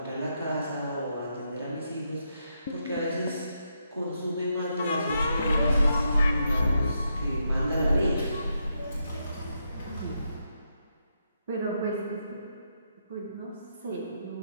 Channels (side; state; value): both; inverted; correlation -0.81